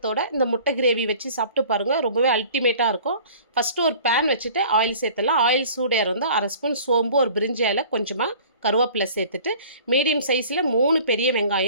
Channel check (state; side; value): inverted; both; correlation -0.47